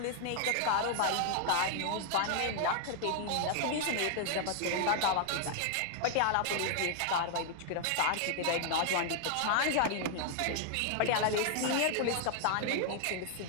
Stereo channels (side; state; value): both; different; correlation 0.00